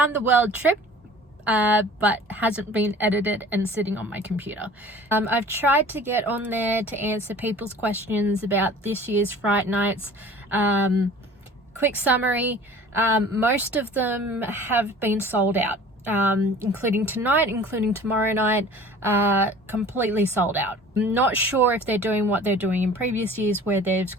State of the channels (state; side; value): normal; both; correlation 0.45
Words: the world trip, but hasn't been edited and sitting on my computer. I've tried to get on there to answer people's questions about this year's Fright Nights. Quick summary. Most of them have been sold out, including tonight, including tomorrow night, completely sold out. I'm not sure if they're doing what they're doing in previous years where they've